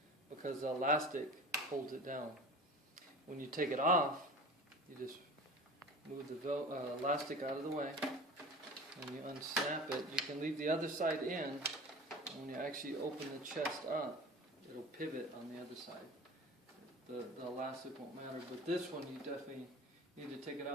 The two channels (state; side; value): normal; both; correlation 0.38